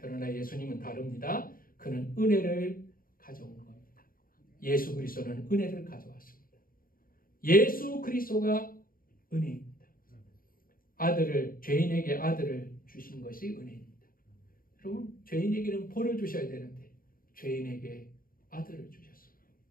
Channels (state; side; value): late; right; 0.41 ms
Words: 예수님은 다릅니다. 그는 은혜를 가져온 겁니다. 예수 그리스도는 은혜를 가져왔습니다. 예수 그리스도가 은혜입니다. 죄인에게 아들을 주신 것이 은혜입니다. 여러분, 죄인에게는 벌을 주셔야 되는데 죄인에게 아들을 주셨습니다.